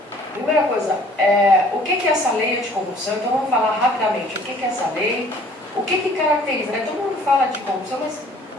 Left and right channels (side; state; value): both; normal; correlation 0.55